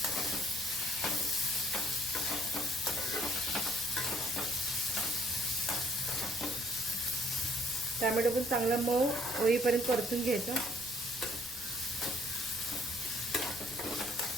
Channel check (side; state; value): right; noise; rumble, 22 dB below the sound